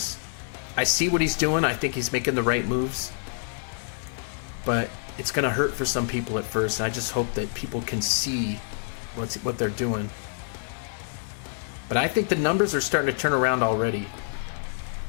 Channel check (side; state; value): right; silent; 59 dB below the other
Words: I see what he's doing. I think he's making the right moves, but it's going to hurt for some people at first, and I just hope that people can see what they're doing. But I think the numbers are starting to turn around already.